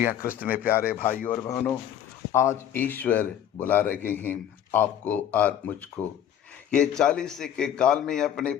हाँ क्रिस्त में प्यारे भाइयों और बहनों, आज ईश्वर बुला रहे हैं आपको और मुझको। ये 40 के काल में अपने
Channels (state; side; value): quieter; right; 10.0 dB